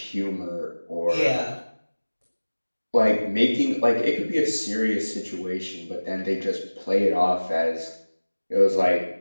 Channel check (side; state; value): both; inverted; correlation -1.00